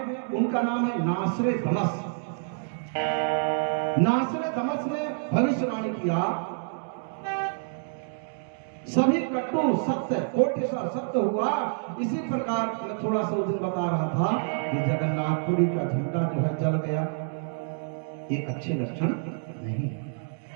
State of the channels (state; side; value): silent; left; digital silence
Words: उनका नाम है नासरे दमस। नासरे दमस ने भविष्यवाणी किया, सभी कट्टू सत्य, कोटि सा सत्य हुआ। इसी प्रकार मैं थोड़ा सा उस दिन बता रहा था कि जगन्नाथपुरी का झंडा जो है जल गया, ये अच्छे लक्षण नहीं है।